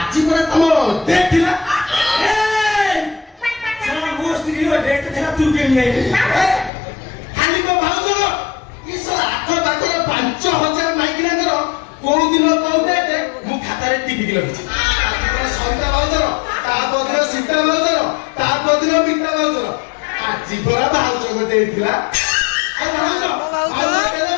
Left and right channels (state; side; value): drops out; right; at 6.7 s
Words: आजि पर तम देख दिला सारा मस्ती रो डेट थरा तू के नहीं खाली को भाउजो इस आठ बाटे 5000 माइग्रेन करो को दिन को डेट मु खाता रे टीवी के लगछि सविता भाउजो ता बदर सीता भाउजो ता बदर बीता भाउजो आजि पर भाउजो को देथिला आ भाउजो भाउजो केले